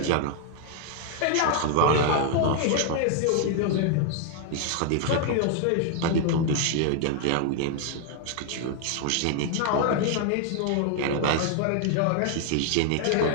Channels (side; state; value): both; different; correlation 0.00